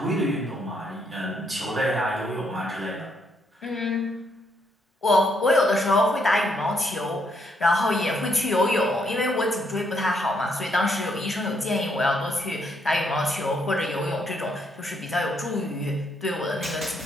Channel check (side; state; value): both; normal; correlation 0.74